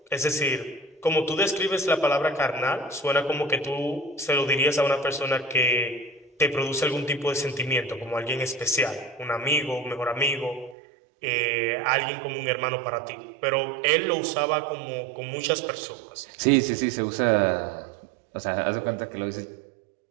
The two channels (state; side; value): drops out; left; at 10.8 s